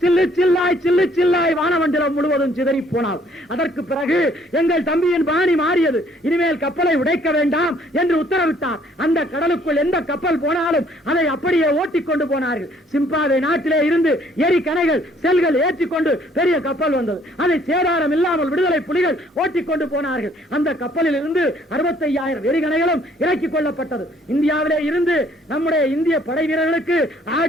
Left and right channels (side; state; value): both; normal; correlation 0.62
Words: சில்லு சில்லாய் சில்லு சில்லாய் வானமண்டலம் முழுவதும் சிதறி போனாள். அதற்கு பிறகு எங்கள் தம்பியின் பாணி மாறியது. இனிமேல் கப்பலை உடைக்க வேண்டாம் என்று உத்தரவிட்டார். அந்த கடலுக்குள் எந்த கப்பல் போனாலும் அதை அப்படியே ஓட்டிக் கொண்டு போனார்கள். சிம்பாவே நாட்டிலே இருந்து எரிகணைகள் செல்கள் ஏற்றிக்கொண்டு பெரிய கப்பல் வந்தது. அதை சேதாரம் இல்லாமல் விடுதலை புலிகள் ஓட்டிக் கொண்டு போனார்கள். அந்த கப்பலில் இருந்து 65,000 எரிகணைகளும் இறக்கிக் கொள்ளப்பட்டது. இந்தியாவிலே இருந்து நம்முடைய இந்திய படை வீரர்களுக்கு